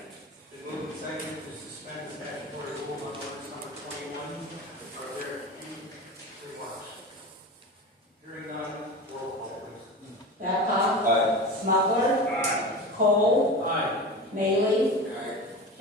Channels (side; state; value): both; normal; correlation 0.29